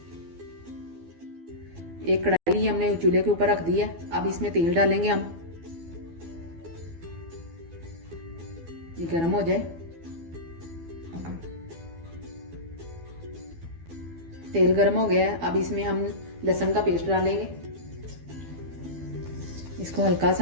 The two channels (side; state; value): left; late; 12 ms